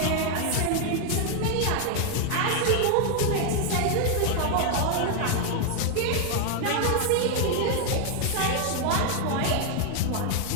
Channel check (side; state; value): both; different; correlation 0.00